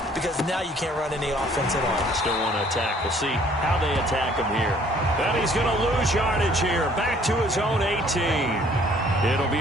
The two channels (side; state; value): both; normal; correlation 0.58